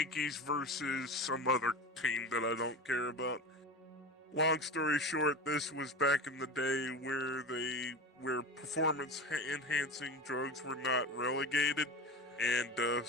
versus some other team that I don't care about. Long story short, this was back in the day where performance enhancing drugs were not relegated and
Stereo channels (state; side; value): normal; both; correlation 0.28